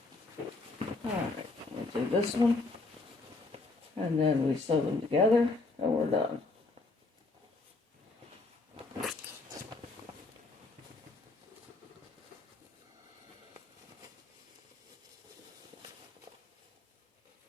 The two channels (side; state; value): right; quieter; 3.4 dB